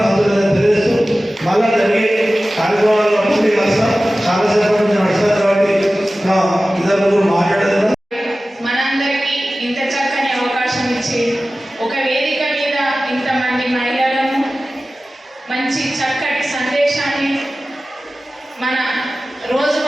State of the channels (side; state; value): both; normal; correlation 0.96